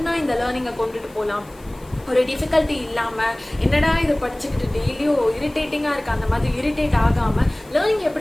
இந்த லேர்னிங்கை கொண்டுட்டு போகலாம், ஒரு டிஃபிகல்ட்டி இல்லாமல் என்னடா இது படிச்சுக்கிட்டு டெய்லியும் இரிட்டேட்டிங்காக இருக்குது அந்த மாதிரி இரிட்டேட் ஆகாமல் லேர்னிங்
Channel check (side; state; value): left; noise; hiss, 27 dB below the sound